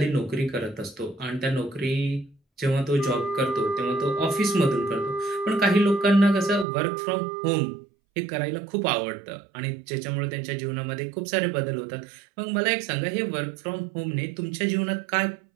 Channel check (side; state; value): left; drops out; at 6.7 s